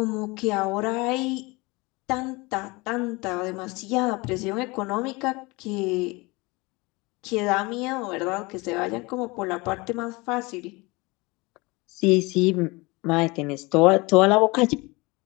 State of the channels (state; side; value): quieter; right; 24.6 dB